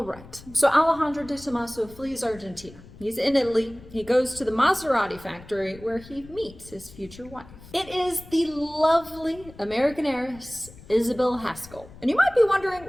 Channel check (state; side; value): noise; left; rumble, 19 dB below the sound